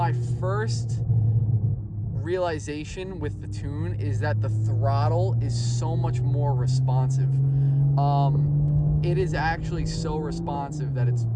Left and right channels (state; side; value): identical; both; correlation 1.00